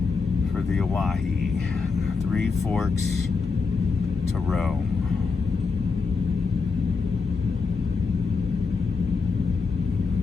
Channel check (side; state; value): right; quieter; 4.7 dB